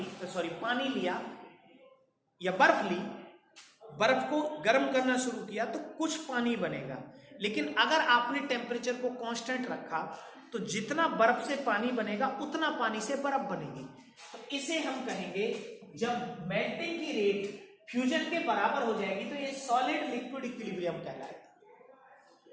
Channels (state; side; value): identical; both; correlation 1.00